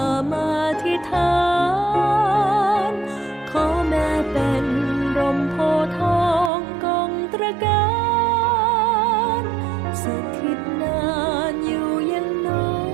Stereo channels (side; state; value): left; drops out; at 6.5 s